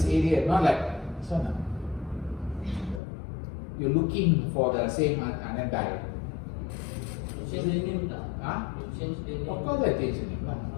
area, not like this one. You're looking for the same and then die. Change the name tak? Huh? Change the name. Of course I change the name.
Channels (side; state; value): right; drops out; at 3.0 s